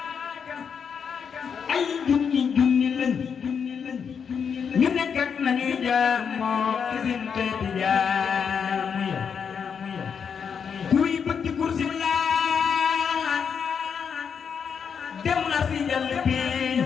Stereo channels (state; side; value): quieter; right; 6.8 dB